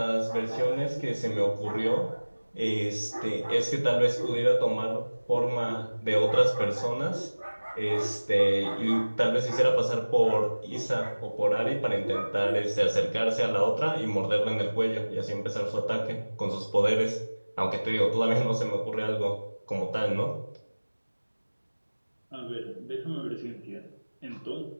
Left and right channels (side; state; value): both; inverted; correlation -1.00